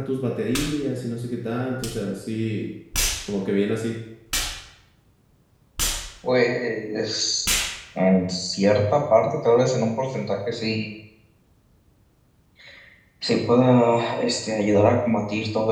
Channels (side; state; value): both; identical; correlation 1.00